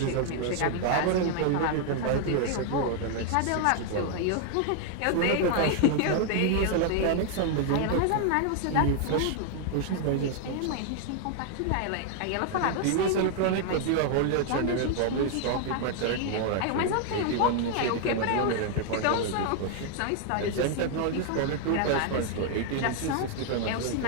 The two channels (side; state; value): both; different; correlation 0.00